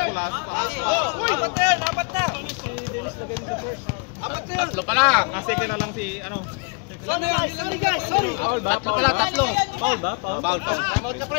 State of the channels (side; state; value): right; quieter; 33.3 dB